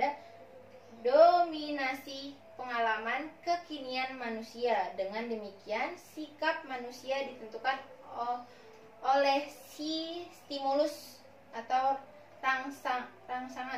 dominasi pengalaman kekinian manusia. Dengan demikian, sikap manusia ditentukan oleh si stimulus atau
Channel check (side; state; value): both; identical; correlation 1.00